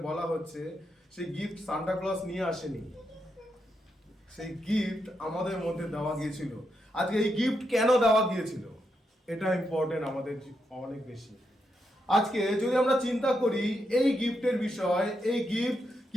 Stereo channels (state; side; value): normal; both; correlation 0.83